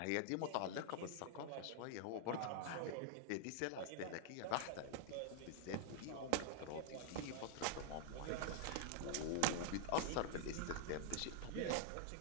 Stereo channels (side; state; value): both; different; correlation -0.01